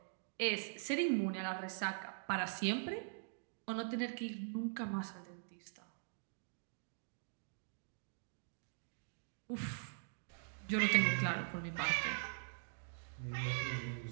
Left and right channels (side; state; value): left; silent; digital silence